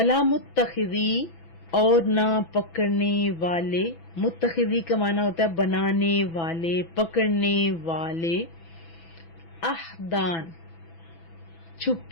متخذی، اور نہ پکڑنے والے. متخذی کا معنی ہوتا ہے بنانے والے، پکڑنے والے. احدان،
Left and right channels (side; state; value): right; late; 6.0 ms